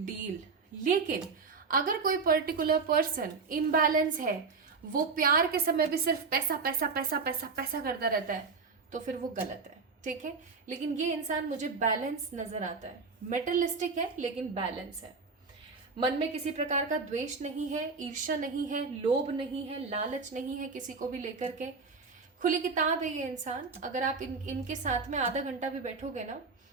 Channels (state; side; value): quieter; left; 4.6 dB